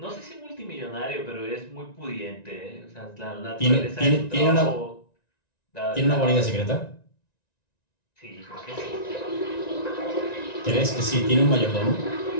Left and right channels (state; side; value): late; right; 1.9 ms